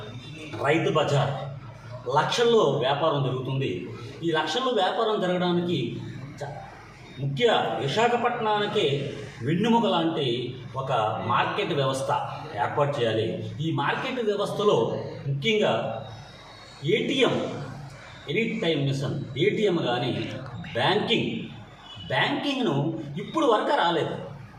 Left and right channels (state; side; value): identical; both; correlation 1.00